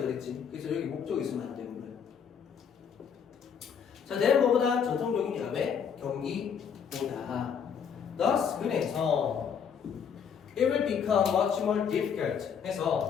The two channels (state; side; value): quieter; right; 7.2 dB